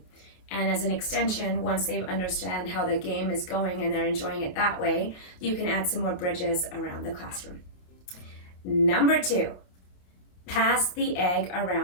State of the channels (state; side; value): late; right; 28 ms